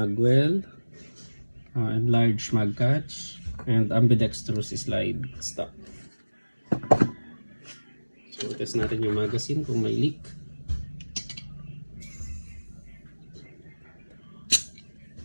enlarged mag catch, and ambidextrous slide stop. So test natin yung magazine kung may leak.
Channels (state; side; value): inverted; both; correlation -1.00